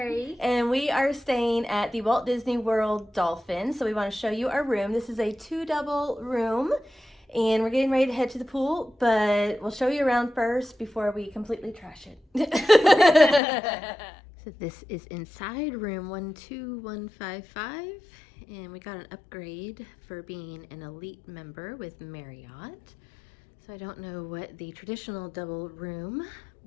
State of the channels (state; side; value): drops out; right; at 13.4 s